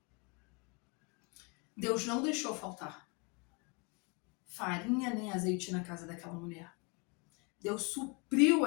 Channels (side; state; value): right; quieter; 31.3 dB